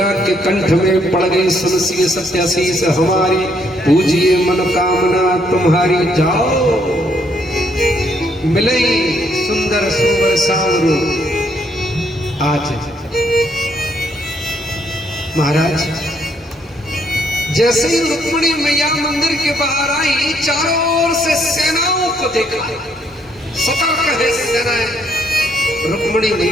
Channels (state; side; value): normal; both; correlation 0.70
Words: के कंठ में पड़ गई, सुनसिए सत्याशीष हमारी, पूजिए मनोकामना तुम्हारी। जाओ मिलई सुंदर सुवर सांवरो। आज महाराज जैसे ही रुक्मिणी मैया मंदिर के बाहर आई, चारों ओर से सेनाओं को देखा, सतर्क है सेनाएं। रुक्मिणी